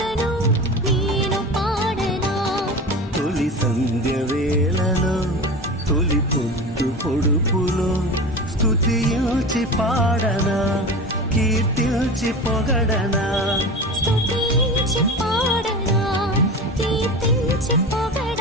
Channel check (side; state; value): both; normal; correlation 0.30